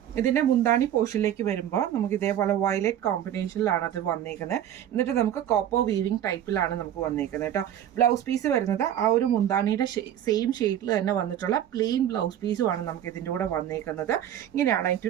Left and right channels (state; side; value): quieter; left; 10.7 dB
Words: ഇതിൻ്റെ മുന്താണി പോർഷനിലേക്ക് വരുമ്പോൾ നമുക്ക് ഇതേപോലെ വയലറ്റ് കോമ്പിനേഷനിലാണ് അത് വന്നേക്കുന്നത്. എന്നിട്ട് നമുക്ക് കോപ്പർ വീവിങ് ടൈപ്പിലാണ് നമുക്ക് വന്നേക്കുന്നത് കേട്ടോ. ബ്ലൗസ് പീസ് വരുന്നത് ആ ഒരു മുന്താണിയുടെ സെയിം ഷെയ്ഡിൽ തന്നെ വന്നിട്ടുള്ള പ്ലെയിൻ ബ്ലൗസ് പീസുമാണ് നമുക്ക് ഇതിൻ്റെ കൂടെ വന്നേക്കുന്നത്. ഇങ്ങനെയാണ് അതിൻ്റെ